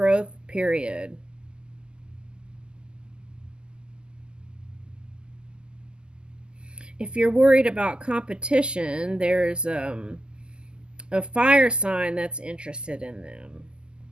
period. If you're worried about competition, there's a fire sign that's interested in them.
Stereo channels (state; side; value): late; left; 0.048 ms